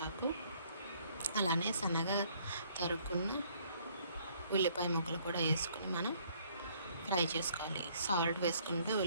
అలానే సన్నగా తరుక్కున్న ఉల్లిపాయ ముక్కలు కూడా వేసుకుని మనం ఫ్రై చేసుకోవాలి. సాల్ట్ వేసుకుంటే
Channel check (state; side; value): inverted; both; correlation -0.63